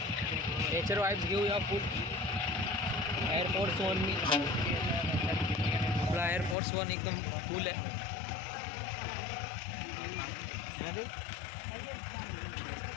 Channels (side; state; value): right; drops out; at 6.6 s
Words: नेचर वाईब्स घेऊया फुल. एअरफोर्स वन मी आपला एअरफोर्स वन एकदम फुल आहे.